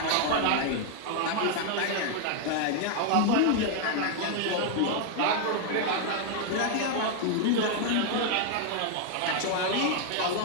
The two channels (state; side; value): different; both; correlation 0.00